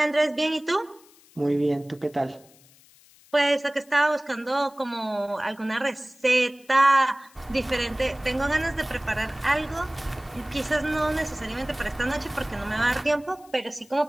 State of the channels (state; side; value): noise; left; hiss, 27 dB below the sound